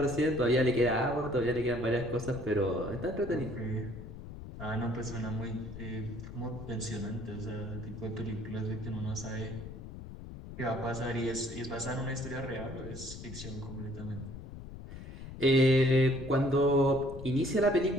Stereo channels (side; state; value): left; noise; rumble, 12 dB below the sound